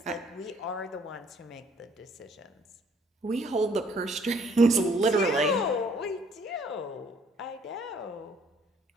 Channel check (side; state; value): both; normal; correlation 0.62